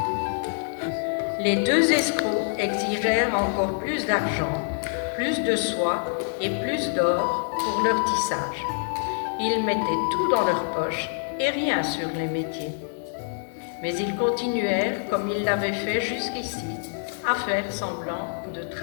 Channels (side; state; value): right; silent; digital silence